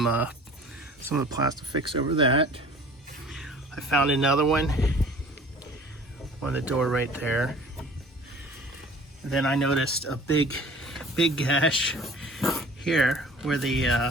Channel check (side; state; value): both; normal; correlation 0.47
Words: of the Plastifix over that. I found another one on the door right there. And then I noticed a big gash here where